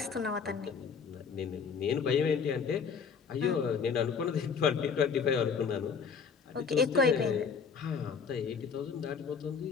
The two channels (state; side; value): quieter; right; 6.1 dB